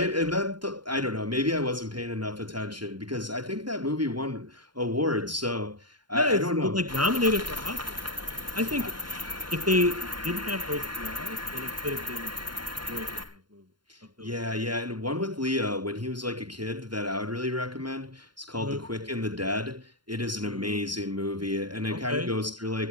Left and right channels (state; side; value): late; left; 0.72 ms